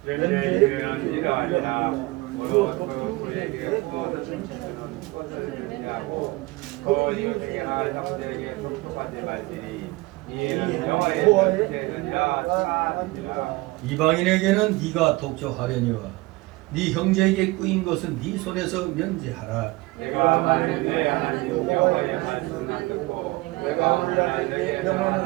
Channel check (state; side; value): quieter; left; 21.9 dB